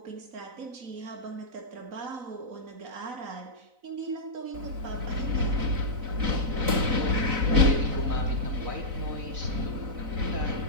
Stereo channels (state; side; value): late; left; 4.0 ms